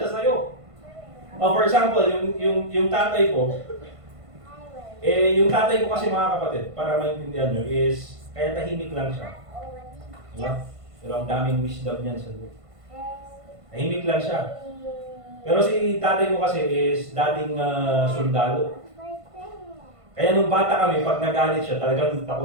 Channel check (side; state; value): left; late; 1.5 ms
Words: sa'yo. For example, yung tatay ko, yung tatay ko kasi mga kapatid, para maintindihan nyo, is kaya tahimik lang siya. Diba? Pero ang daming wisdom niyan sa loob. Tahimik lang siya. Pero si tatay ko kasi is dating sundalo. Kaya nung bata kami, pag nagalit siya, talagang